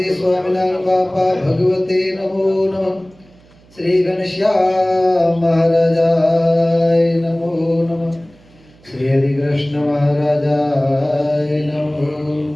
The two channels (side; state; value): right; noise; hum, 28 dB below the sound